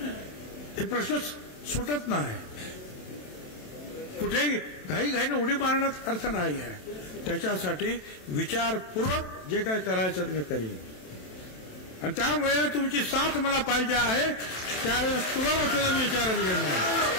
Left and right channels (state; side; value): late; right; 27 ms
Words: हे प्रश्न सुटत नाही. कुठेही घाईने उडी मारण्यात अर्थ नाही आहे. त्याच्यासाठी विचारपूर्वक जे काय करायचं मी करीन आणि त्यामुळे तुमची साथ मला पाहिजे आहे. त्यावेळेस तुम्हाला सुद्धा मी विचारत घेणार,